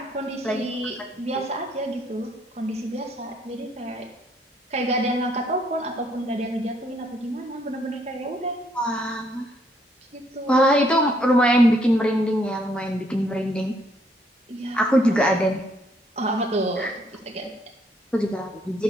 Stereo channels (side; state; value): both; normal; correlation 0.69